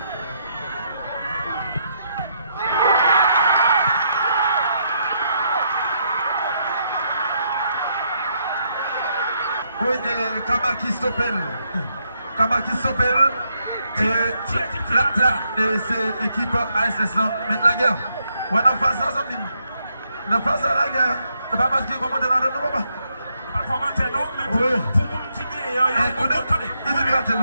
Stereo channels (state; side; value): inverted; both; correlation -0.77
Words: Oui, Kama qui s'appelle. Kama qui s'appelle. Et c'est l'équipe ASS là. Mettre la guerre. Ouais, non, face à ça, non, face à la guerre. C'est pas parce qu'il commande dans le nom, pas. Pas commenter, non, mais pour mon petit nez, il est miracle,